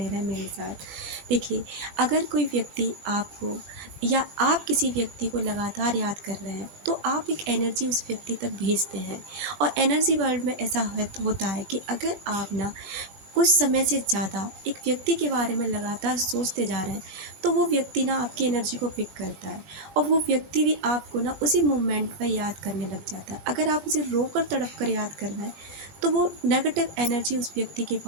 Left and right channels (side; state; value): left; late; 20 ms